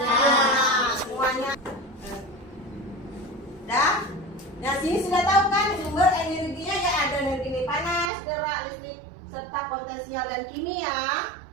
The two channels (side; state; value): left; drops out; at 8.1 s